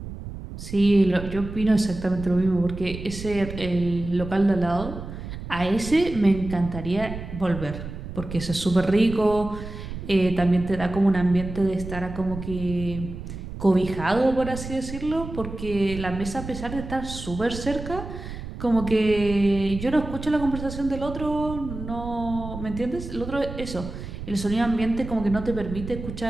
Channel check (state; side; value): noise; right; rumble, 10 dB below the sound